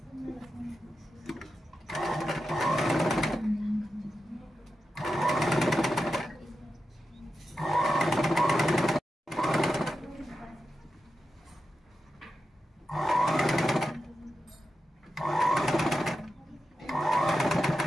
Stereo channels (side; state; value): both; normal; correlation 0.90